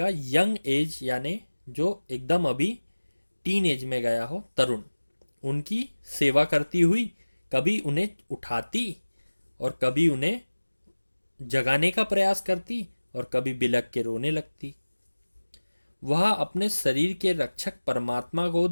यंग एज, यानी जो एकदम अभी टीन एज में गया हो, तरुण, उनकी सेवा करती हुई कभी उन्हें उठाती और कभी उन्हें जगाने का प्रयास करती और कभी बिलख के रोने लगती। वह अपने शरीर के रक्षक परमात्मा को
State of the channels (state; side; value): inverted; both; correlation -1.00